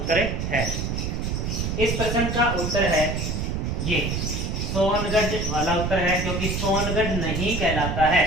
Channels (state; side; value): noise; right; rumble, 1 dB below the sound